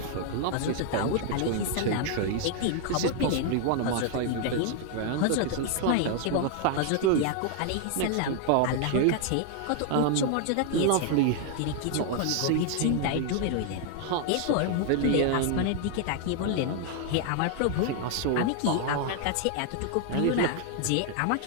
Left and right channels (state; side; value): different; both; correlation 0.00